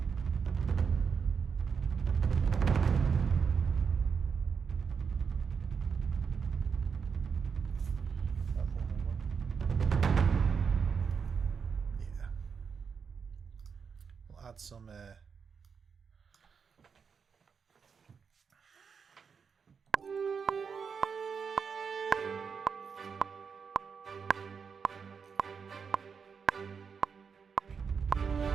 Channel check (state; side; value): quieter; left; 6.1 dB